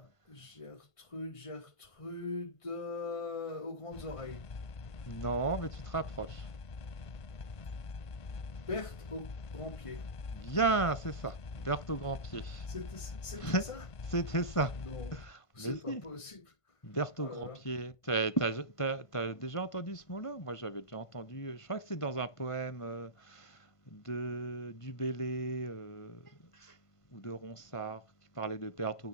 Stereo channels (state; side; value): late; right; 1.5 ms